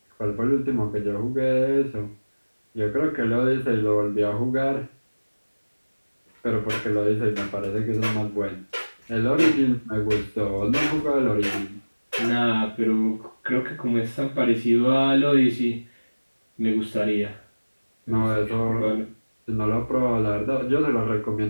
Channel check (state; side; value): inverted; both; correlation -1.00